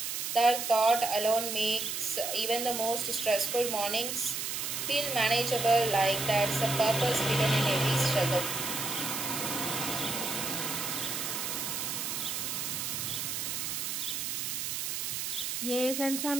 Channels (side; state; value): right; noise; hiss, 2 dB below the sound